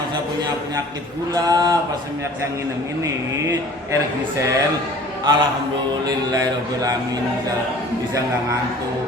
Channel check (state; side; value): normal; both; correlation 0.47